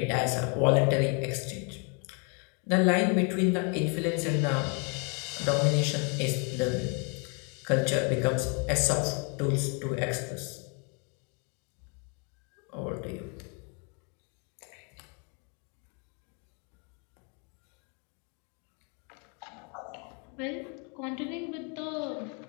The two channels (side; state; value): right; quieter; 36.3 dB